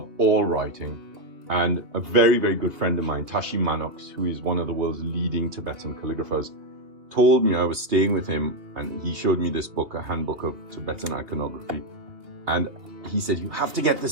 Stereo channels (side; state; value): left; late; 2.7 ms